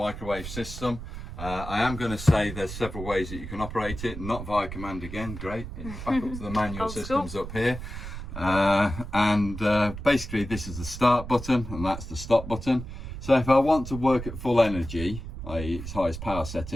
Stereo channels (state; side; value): noise; right; rumble, 9 dB below the sound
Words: system. I am going to say there's several ways that you can operate it, not via command again, great. It's back up to the manual systems up here. Basically this is the start button and that's the stop button. So if I want to work at full energy, i.e. its highest power